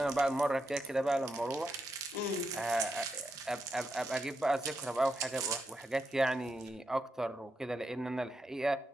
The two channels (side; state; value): both; normal; correlation 0.84